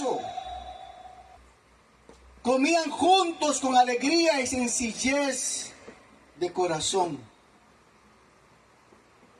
Comían juntos con alegría y sencillez de corazón,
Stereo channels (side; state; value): both; identical; correlation 1.00